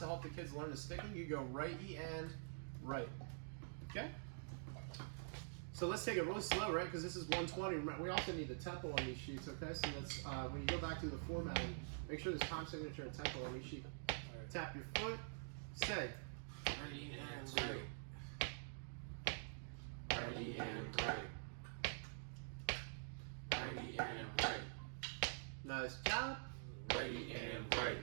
help the kids learn the sticking, you go right E and right. Okay? So let's take it really slow, right? Because this is 120. We also need the tempo on these sheets, okay? So let's, when you go back to the formatting, make sure there's time signature and tempo on each sheet. Tap your foot, say. Ready and right. Ready and right. Ready and right. Nice job. Ready and right.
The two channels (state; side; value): silent; left; digital silence